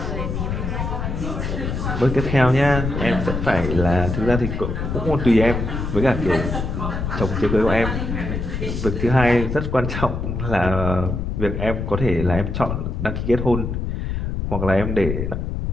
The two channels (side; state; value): left; noise; rumble, 3 dB below the sound